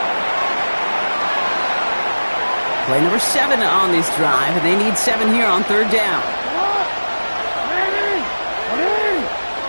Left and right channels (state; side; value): inverted; both; correlation -1.00